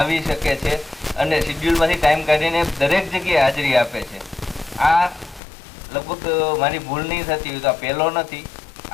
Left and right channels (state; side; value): drops out; right; at 5.4 s